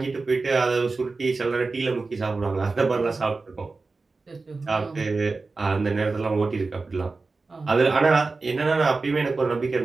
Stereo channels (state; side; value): quieter; left; 3.9 dB